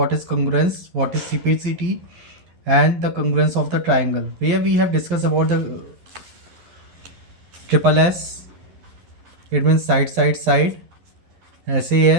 is congruence, what is CPCT and the congruence of the triangle, where we have discussed about the triple S, it means side side side,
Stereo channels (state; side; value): late; left; 12 ms